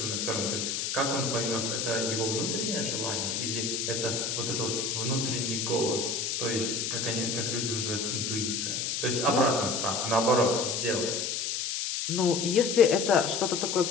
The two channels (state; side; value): noise; left; hiss, 1 dB below the sound